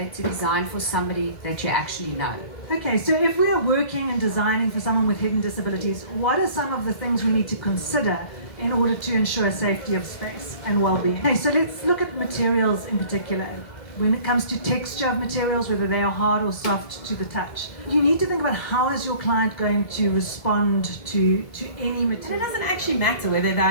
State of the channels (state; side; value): late; right; 1.7 ms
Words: to design for somebody that you actually know. Okay, so if we are working and designing for someone with hidden disabilities, what are some of the things we need to consider in order to ensure safety of space and well-being? Okay, so let's look at materials in particular. When it comes to texture of materials, whether they are hard or soft to the touch, you need to think about how is your client going to respond to any material. And it doesn't actually matter whether they